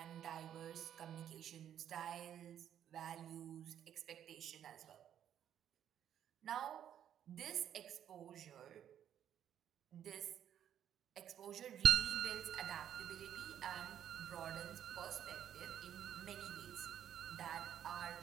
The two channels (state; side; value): quieter; left; 10.0 dB